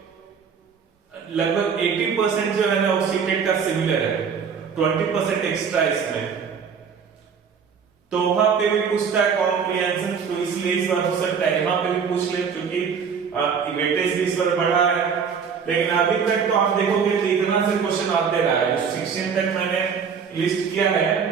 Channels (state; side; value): quieter; left; 6.4 dB